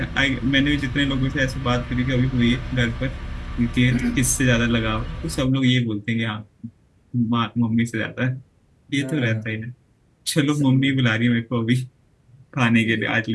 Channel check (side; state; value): both; identical; correlation 1.00